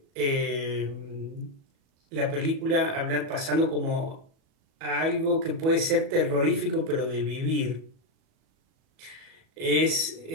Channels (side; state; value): left; late; 37 ms